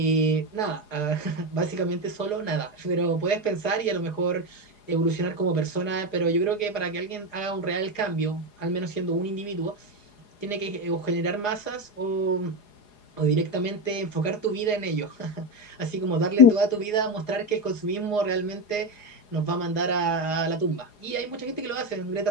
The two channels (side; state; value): right; late; 4.8 ms